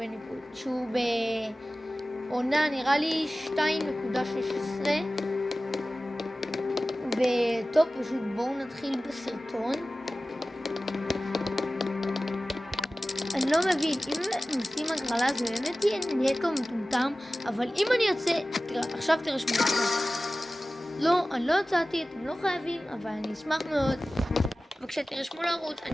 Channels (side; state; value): both; normal; correlation 0.96